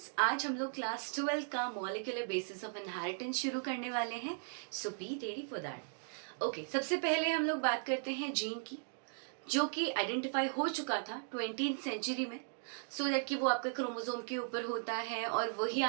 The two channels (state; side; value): silent; left; digital silence